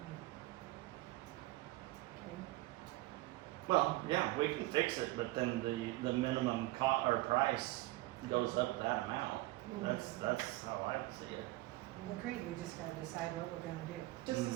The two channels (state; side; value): quieter; left; 19.1 dB